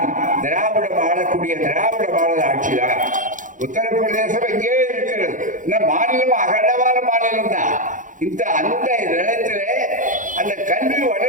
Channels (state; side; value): late; left; 0.38 ms